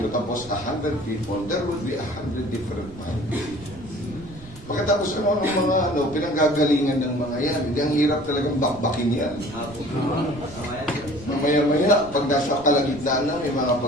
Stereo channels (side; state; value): right; noise; rumble, 18 dB below the sound